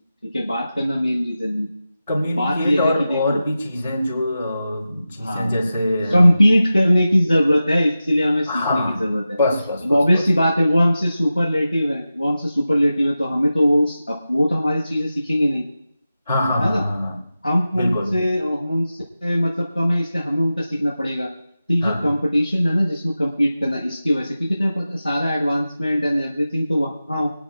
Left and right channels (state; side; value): inverted; both; correlation -0.93